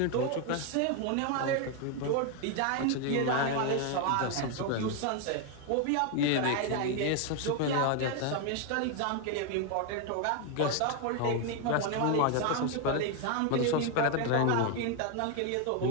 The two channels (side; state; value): both; different; correlation 0.01